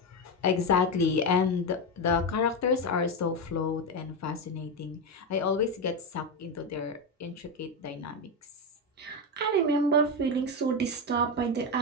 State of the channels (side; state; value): both; normal; correlation 0.11